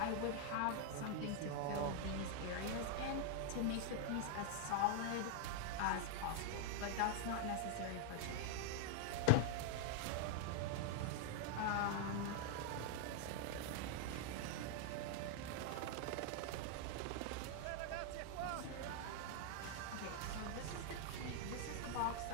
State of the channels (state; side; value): different; both; correlation 0.00